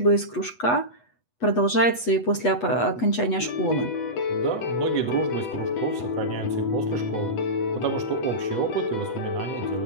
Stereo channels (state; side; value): late; right; 8.2 ms